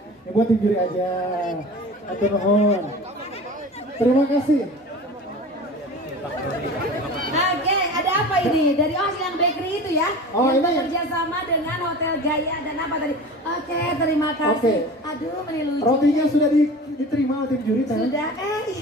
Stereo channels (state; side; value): normal; both; correlation 0.36